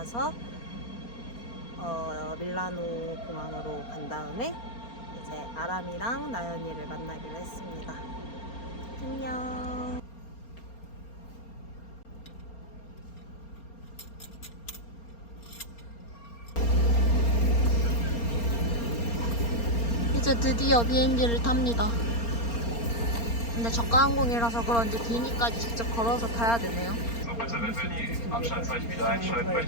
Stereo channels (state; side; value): late; right; 4.3 ms